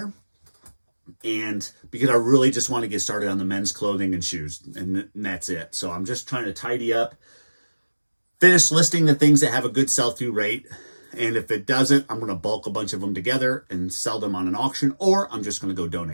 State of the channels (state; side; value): inverted; both; correlation -1.00